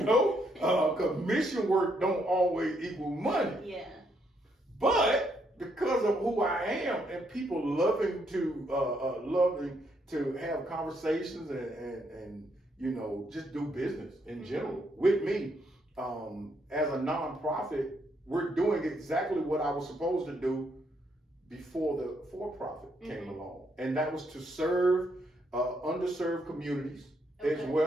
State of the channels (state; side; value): normal; both; correlation 0.74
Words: because mission work don't always equal money. Yeah. But because of who I am and people loving to have conversations and you know, just do business in general with me, as a nonprofit, we're doing exactly what I was supposed to do before the for-profit came along, and that was to serve underserved communities, as